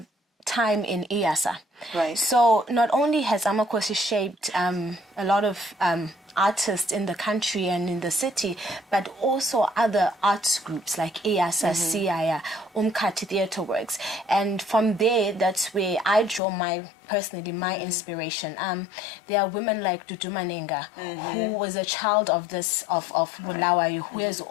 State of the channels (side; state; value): right; drops out; at 16.4 s